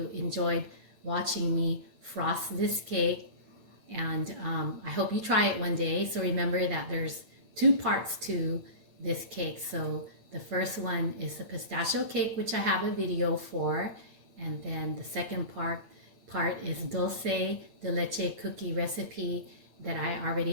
enjoyed watching me frost this cake, and I hope you try it one day. So remember that there's 2 parts to this cake. So the first one is the pistachio cake, which I have a video for, and then the second part is dulce de leche cookie recipe that I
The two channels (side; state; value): left; late; 8.9 ms